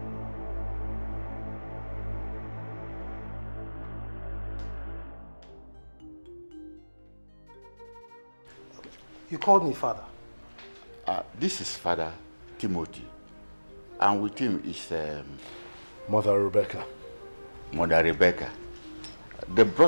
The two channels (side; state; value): both; inverted; correlation -1.00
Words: You called me father. This is Father Timothy, and with him is Mother Rebecca. Mother Rebecca. They